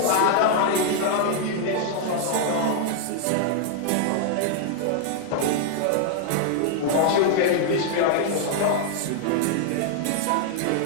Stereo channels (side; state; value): both; different; correlation 0.00